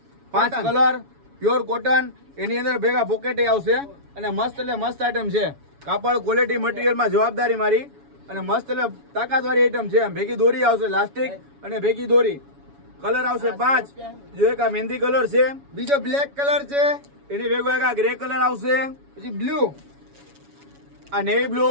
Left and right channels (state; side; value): late; left; 7.1 ms